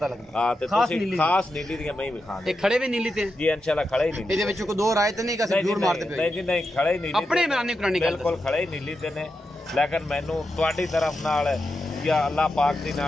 ਲੱਗਦਾ। ਹਾਂ ਤੇ ਖਾਸ ਤੁਸੀਂ ਨੀਲੀ ਖਾਸ ਨੀਲੀ ਦੀਆਂ ਮਈ ਵਿਖਾਂਦੇ ਇਹ ਖੜੇ ਵੀ ਨੀਲੀ ਤੇ ਜੀ ਇੰਸ਼ਾਅੱਲਾ ਖੜੇ ਹੀ ਨੀਲੀ। ਇਹਦੇ ਵਿੱਚ ਕੋਈ ਦੋ ਰਾਏ ਤੇ ਨਹੀਂ ਕਿ ਅਸੀਂ ਜੂੜ ਮਾਰਦੇ ਪਏ? ਨਹੀਂ ਜੀ ਨਹੀਂ ਖੜੇ ਹੀ ਨੀਲੀ ਆਪਣੇ ਤੇ- ਮੈਰਾਨੀ ਕੁਰਾਨੀ ਗੱਲ ਬਿਲਕੁਲ ਖੜੇ ਹੀ ਨੀਲੀ ਤੇ ਨੇ ਲੇਕਿਨ ਮੈਨੂੰ ਤੁਹਾਡੀ ਤਰਫ ਨਾਲ ਜਾਂ ਅੱਲਾਹ ਪਾਕ ਦੀ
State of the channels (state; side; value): normal; both; correlation 0.87